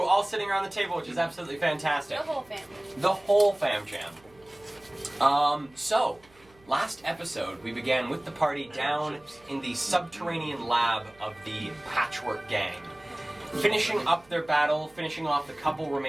all sitting around the table, which is absolutely fantastic. The whole family. The whole fam jam. So, last episode we began with the party down in the subterranean lab of the Patchwork Gang. Finishing up their battle, finishing off the couple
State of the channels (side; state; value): right; noise; hum, 30 dB below the sound